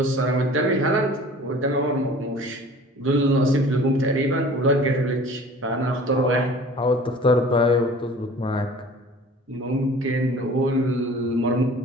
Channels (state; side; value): normal; both; correlation 0.45